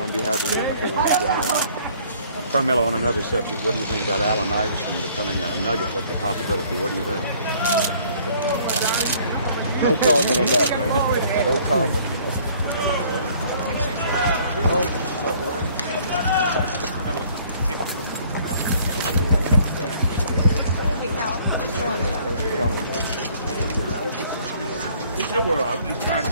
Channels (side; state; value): both; inverted; correlation -0.58